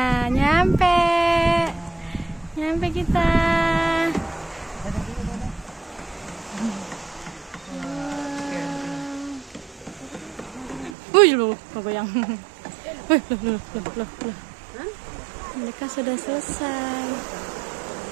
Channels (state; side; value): drops out; left; at 11.0 s